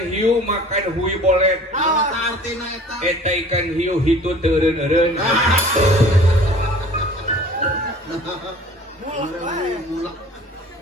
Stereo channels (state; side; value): normal; both; correlation 0.47